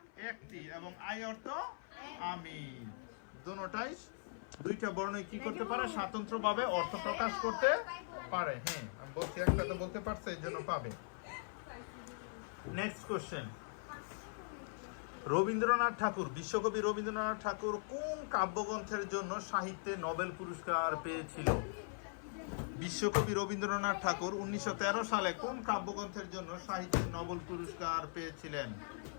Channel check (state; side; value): silent; right; 51 dB below the other